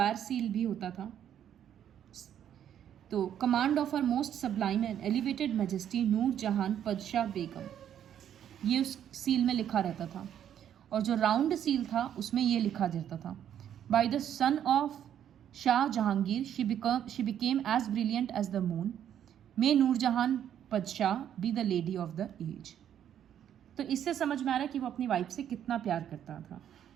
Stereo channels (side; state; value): left; quieter; 9.9 dB